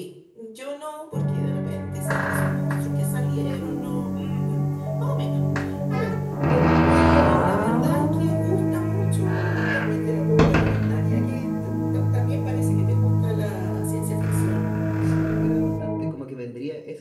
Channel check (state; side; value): identical; both; correlation 1.00